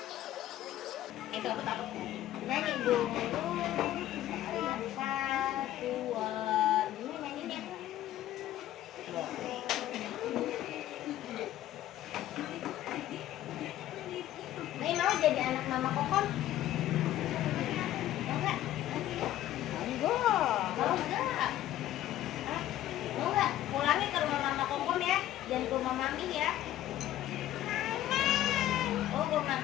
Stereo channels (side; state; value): right; quieter; 13.3 dB